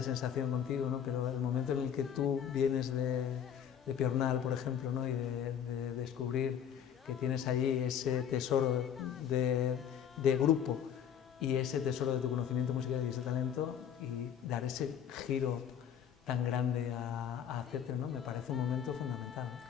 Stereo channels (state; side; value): quieter; right; 8.7 dB